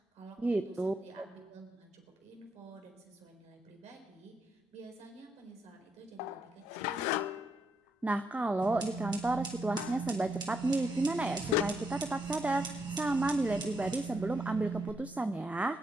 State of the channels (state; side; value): normal; both; correlation 0.78